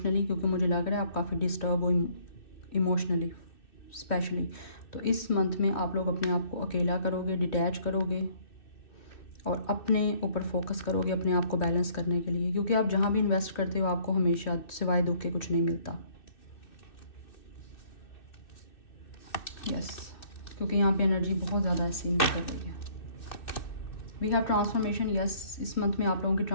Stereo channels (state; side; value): late; right; 2.6 ms